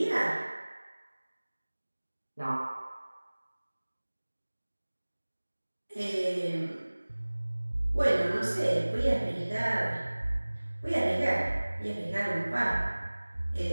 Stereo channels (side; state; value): both; inverted; correlation -1.00